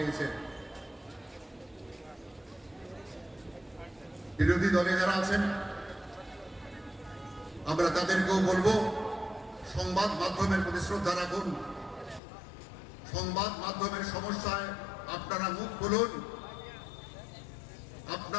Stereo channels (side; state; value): right; drops out; at 12.2 s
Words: বিরোধী দলে যারা আছেন আমরা তাদেরকেও বলবো, সংবাদ মাধ্যমের প্রতি শ্রদ্ধা রাখুন, সংবাদ মাধ্যমের সমস্যায় আপনারা মুখ খুলুন।